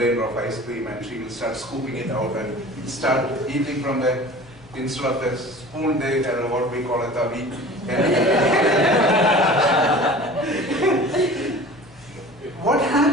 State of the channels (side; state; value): left; noise; hum, 27 dB below the sound